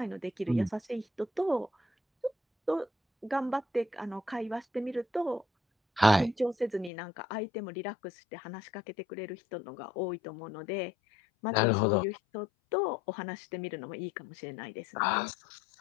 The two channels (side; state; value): right; drops out; at 6.9 s